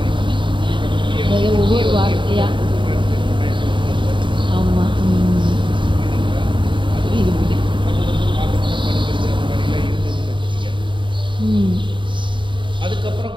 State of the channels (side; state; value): left; late; 0.23 ms